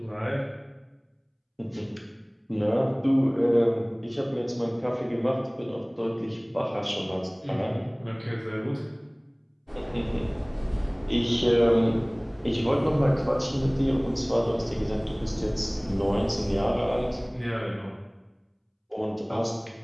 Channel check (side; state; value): both; identical; correlation 1.00